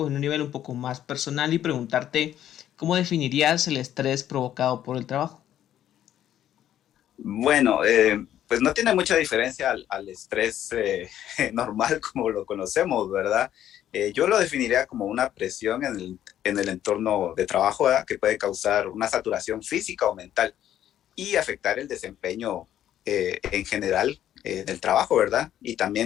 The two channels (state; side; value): quieter; right; 11.4 dB